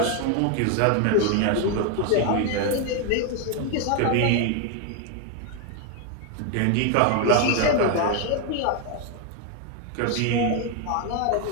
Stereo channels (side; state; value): both; different; correlation 0.01